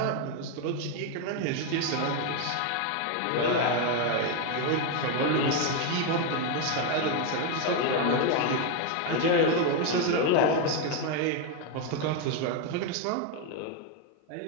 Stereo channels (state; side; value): different; both; correlation 0.02